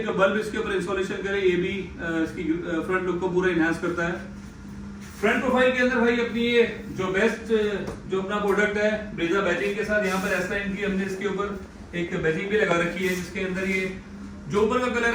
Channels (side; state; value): both; identical; correlation 1.00